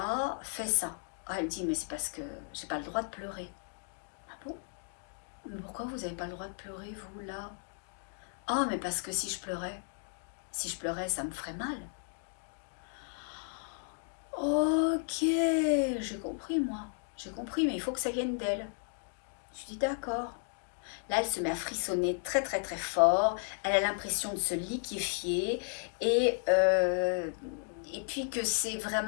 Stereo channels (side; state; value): right; silent; 55 dB below the other